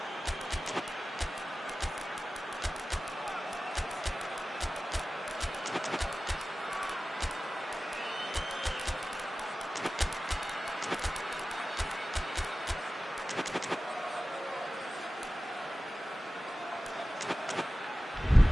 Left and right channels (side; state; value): both; normal; correlation 0.96